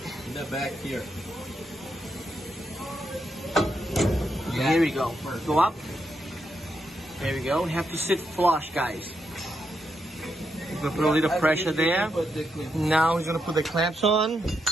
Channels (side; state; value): both; normal; correlation 0.82